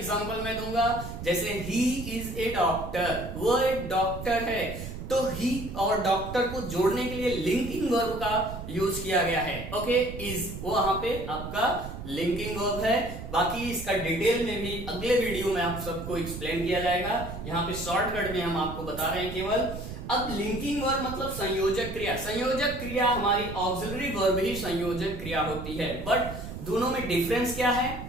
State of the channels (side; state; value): right; noise; rumble, 9 dB below the sound